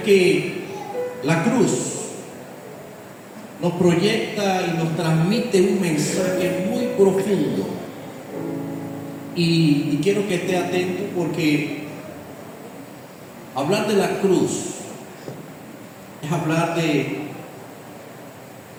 que la cruz nos proyecta y nos transmite un mensaje muy profundo. Y quiero que esté atento, porque hablar de la cruz es hablar de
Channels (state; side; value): identical; both; correlation 1.00